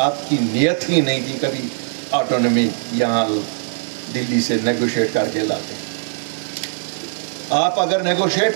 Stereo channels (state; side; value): silent; left; digital silence